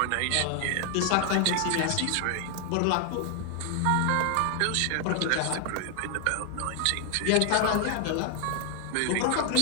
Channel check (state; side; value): different; both; correlation 0.00